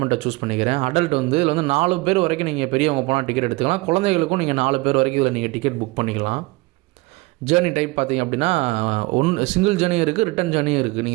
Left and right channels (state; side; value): quieter; left; 23.0 dB